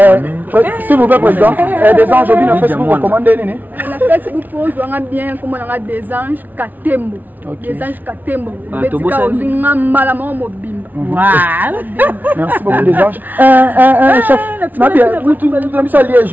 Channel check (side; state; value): left; late; 0.082 ms